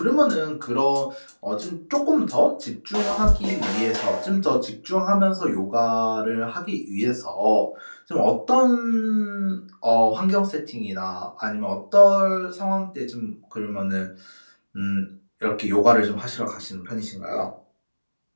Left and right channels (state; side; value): inverted; both; correlation -1.00